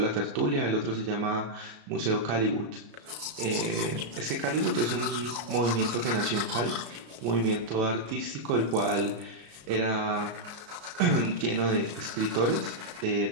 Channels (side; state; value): left; late; 34 ms